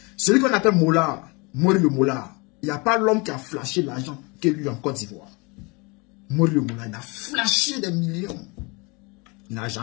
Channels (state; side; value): quieter; right; 28.4 dB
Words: Celui qu'on appelle Mola, Mori le Mola, il n'y a pas l'homme qui a flashé l'argent que lui en Côte d'Ivoire. Mori le Mola, il a flashé des millions. Il n'a